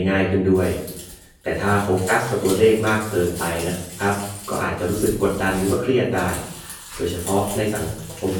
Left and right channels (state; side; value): identical; both; correlation 1.00